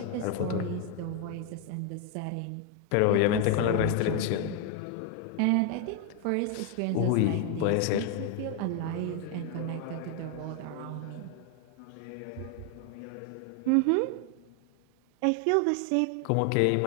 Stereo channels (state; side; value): different; both; correlation 0.01